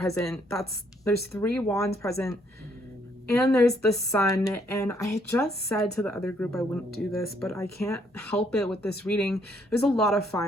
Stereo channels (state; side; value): normal; both; correlation 0.69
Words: there's 3 wands present, and there's the Sun. And I just said to the other group I wouldn't do this, but I can't help it with this reading. There's a lot of